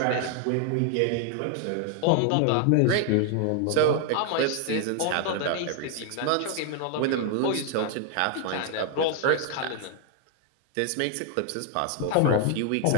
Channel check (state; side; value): different; both; correlation 0.00